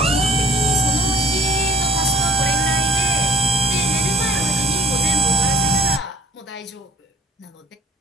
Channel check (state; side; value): normal; both; correlation 0.54